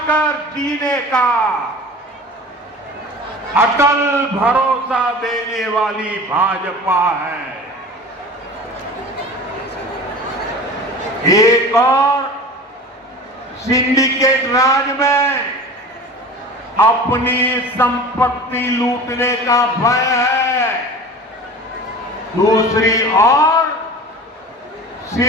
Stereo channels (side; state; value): both; normal; correlation 0.37